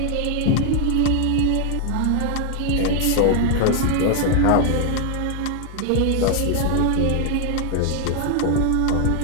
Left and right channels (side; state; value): both; different; correlation 0.00